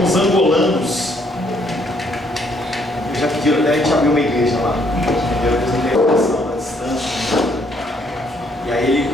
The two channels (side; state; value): both; normal; correlation 0.68